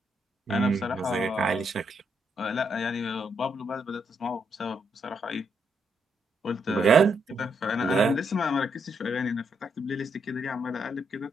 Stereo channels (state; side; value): normal; both; correlation 0.77